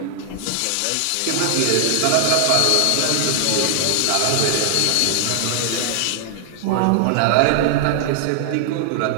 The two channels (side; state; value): both; different; correlation -0.01